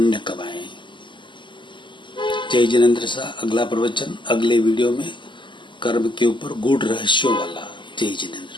कमाएं। जय जिनेंद्र शाह। अगला प्रवचन अगले वीडियो में कर्म के ऊपर गूढ़ रहस्यों वाला। जय जिनेंद्र।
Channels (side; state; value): right; late; 0.24 ms